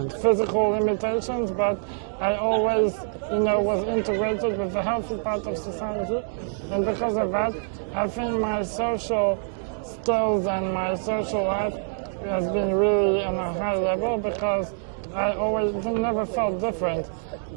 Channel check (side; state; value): left; silent; digital silence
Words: Physical limitations, but I always, was integrated with the healthy part of society, and because of that, I think my social skills and my social life has been really on a high level because I always never felt different.